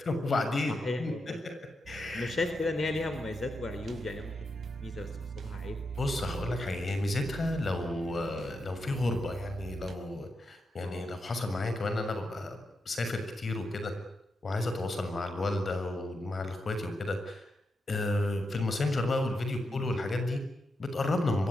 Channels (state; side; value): normal; both; correlation 0.85